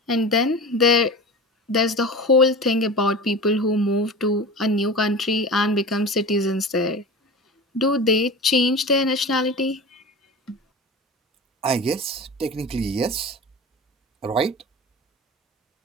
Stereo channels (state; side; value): normal; both; correlation 0.32